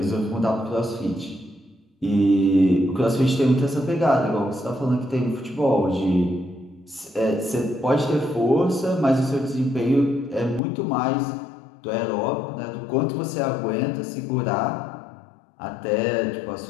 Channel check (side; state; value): right; drops out; at 10.6 s